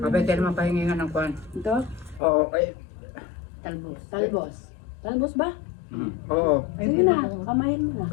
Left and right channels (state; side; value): drops out; right; at 2.2 s